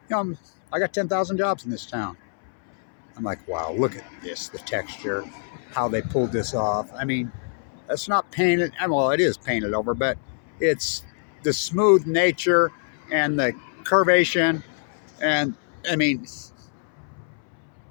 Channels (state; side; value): silent; right; 62 dB below the other